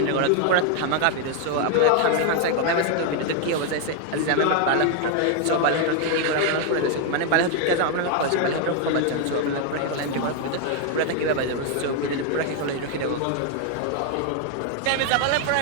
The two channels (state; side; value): different; both; correlation 0.01